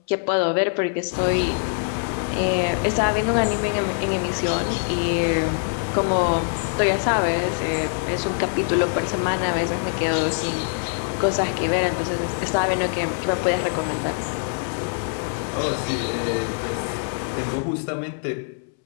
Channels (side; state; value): right; silent; 63 dB below the other